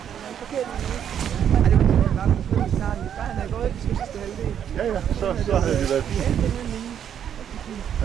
Ja, så havde det været fint.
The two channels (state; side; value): quieter; left; 9.1 dB